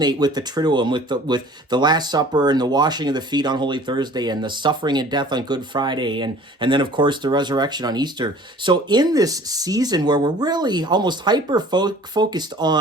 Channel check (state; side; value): normal; both; correlation 0.49